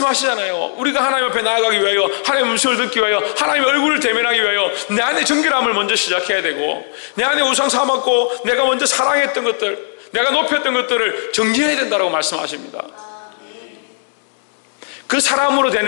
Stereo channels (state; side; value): silent; right; digital silence